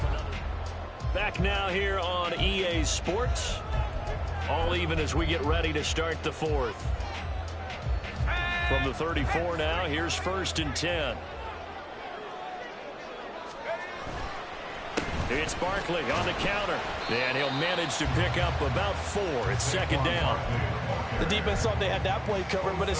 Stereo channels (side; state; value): both; identical; correlation 1.00